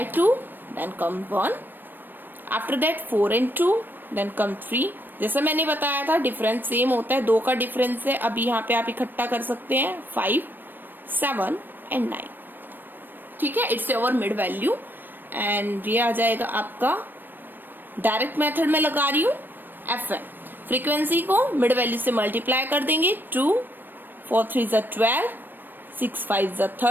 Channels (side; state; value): left; late; 0.093 ms